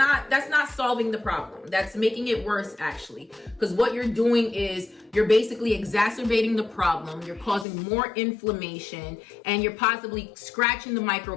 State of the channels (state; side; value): drops out; right; at 7.7 s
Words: solving the problem. That's making it worse, actually. Because what you're doing is you're basically exacerbating the problem. You're causing more inflammation, and you're possibly scratching the